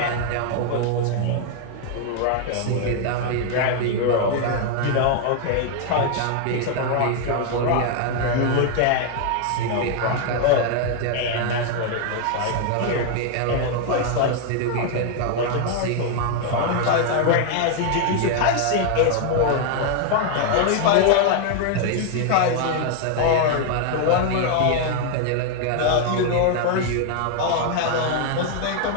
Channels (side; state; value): both; different; correlation 0.00